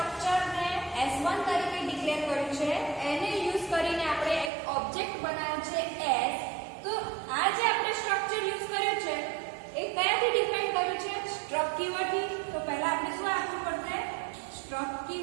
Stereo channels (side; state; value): left; drops out; at 4.5 s